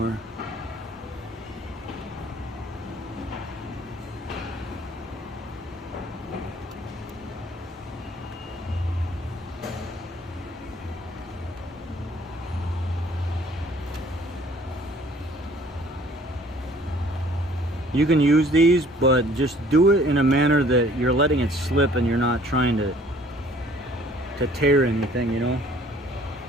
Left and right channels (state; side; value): normal; both; correlation 0.55